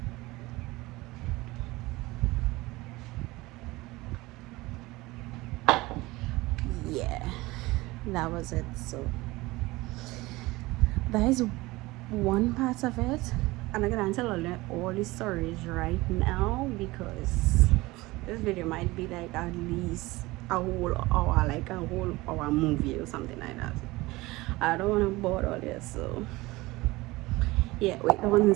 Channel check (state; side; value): quieter; left; 20.7 dB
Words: Yeah, that was it. So that is one part of it, and I'm gonna tell all the stories right now because this video might be like at least a whole hour, like a whole hour movie or something like that. I don't want to bore all this, so yeah, wait 1